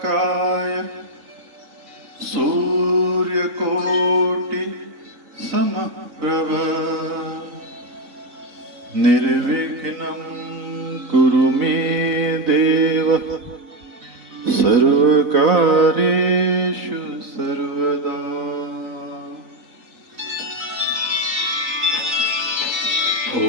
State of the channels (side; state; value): left; late; 4.0 ms